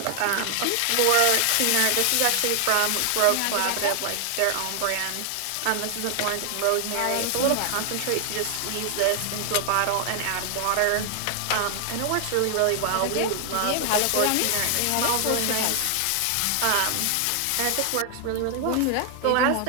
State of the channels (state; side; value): different; both; correlation 0.00